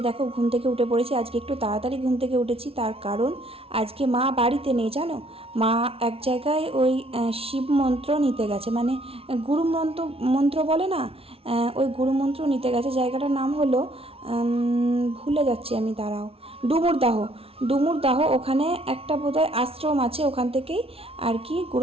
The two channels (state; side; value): late; left; 0.27 ms